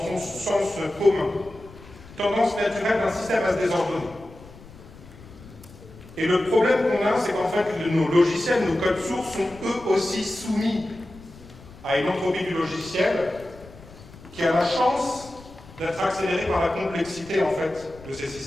son sens commun. Tendance naturelle d'un système à se désordonner. Et le problème qu'on a, c'est qu'en fait, nos logiciels, nos codes sources sont eux aussi soumis à une entropie du logiciel qui a la chance d'être accélérée par la complexité en fait de ces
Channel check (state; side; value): noise; left; rumble, 20 dB below the sound